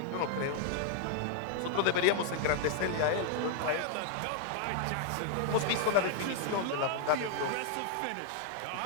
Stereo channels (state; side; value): different; both; correlation 0.00